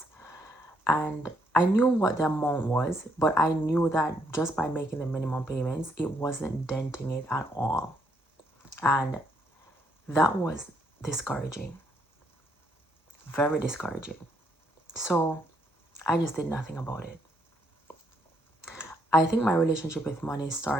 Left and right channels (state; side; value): normal; both; correlation 0.72